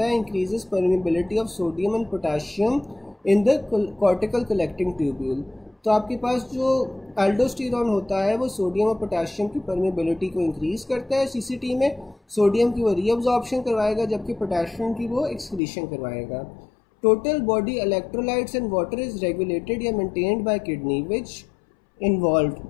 है? Increases permeability of sodium and potassium in the cortical collecting tubule. तो आपके पास जो एल्डोस्टेरोन होता है वो सोडियम और पोटेशियम की परमिबिलिटी को इंक्रीज करता है सीसीटी में। सोडियम की वो रीअब्जॉर्प्शन करवाएगा, जबकि पोटेशियम की वो एक्सक्रीशन करवाएगा। Total body electrolytes and water is regulated या maintained by kidney which involve.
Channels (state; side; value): drops out; right; at 15.6 s